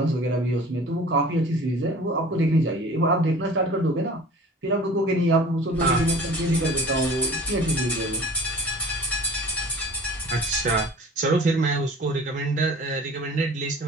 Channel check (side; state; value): both; normal; correlation 0.44